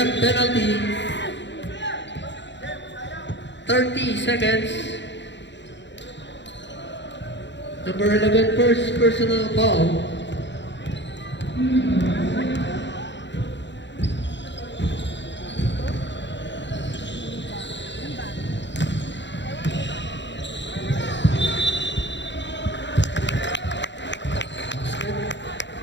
penalty. 30 seconds. Number 11, first personal foul.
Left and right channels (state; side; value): late; right; 0.52 ms